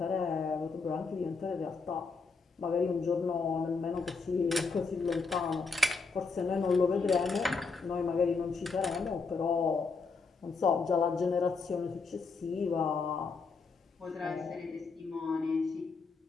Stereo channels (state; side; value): quieter; right; 4.5 dB